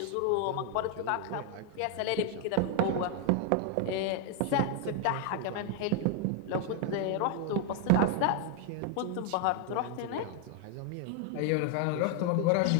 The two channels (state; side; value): different; both; correlation 0.01